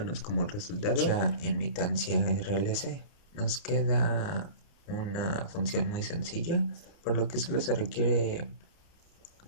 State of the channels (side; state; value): right; late; 30 ms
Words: como resultado ya imitancia RLC. Nos queda una función muy sencilla, por lo que solo se requiere